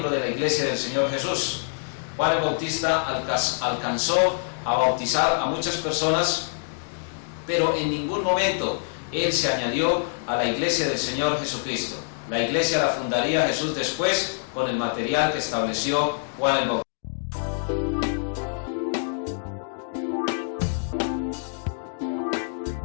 de la iglesia del Señor Jesús. Juan el Bautista alcanzó a bautizar a muchas personas, pero en ningún momento él se añadió a la iglesia del Señor Jesucristo. La iglesia la fundaría Jesús después con el material que estableció Juan el Bautista.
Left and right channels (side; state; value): right; silent; digital silence